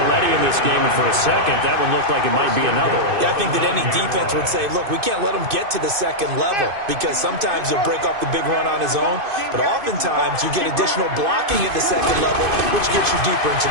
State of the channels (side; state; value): left; late; 2.5 ms